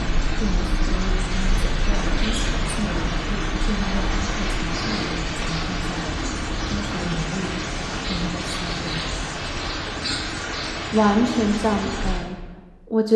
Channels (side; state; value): both; identical; correlation 1.00